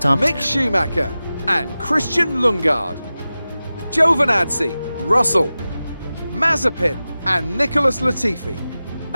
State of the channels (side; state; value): both; inverted; correlation -0.95